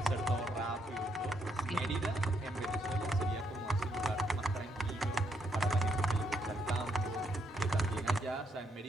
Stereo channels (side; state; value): both; normal; correlation 0.76